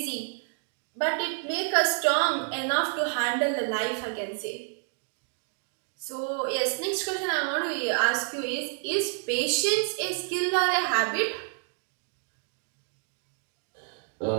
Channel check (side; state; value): left; silent; 59 dB below the other